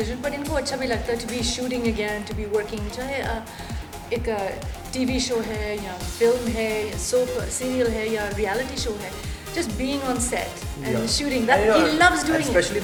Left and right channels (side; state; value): both; identical; correlation 1.00